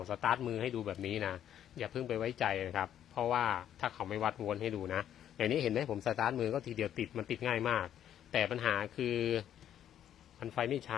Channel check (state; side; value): quieter; right; 10.4 dB